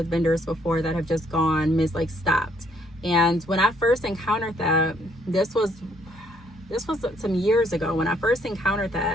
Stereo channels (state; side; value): normal; both; correlation 0.68